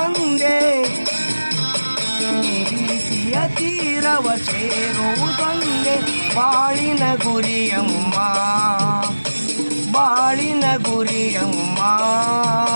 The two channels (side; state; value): both; inverted; correlation -1.00